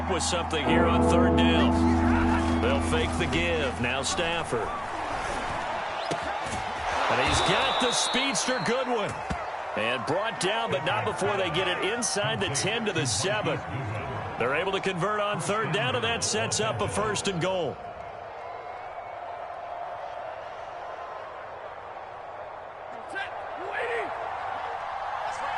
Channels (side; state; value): both; identical; correlation 1.00